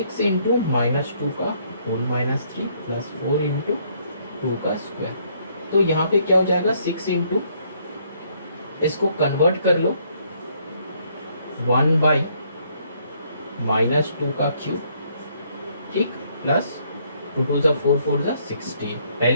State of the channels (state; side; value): inverted; both; correlation -0.68